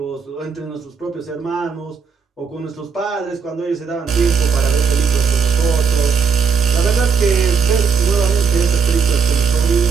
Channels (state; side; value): quieter; left; 5.9 dB